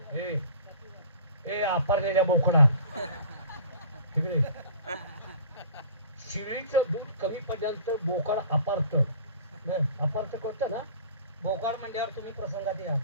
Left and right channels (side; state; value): both; inverted; correlation -0.45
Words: ए ए आपारलेल्या बोकडा तिकडे शिळीचं दूध कमी पडल्यानंतर बोकाड अपारत. अपारत करतं ना. भोकाळ म्हणल्यावर तुम्ही प्रसंगात या.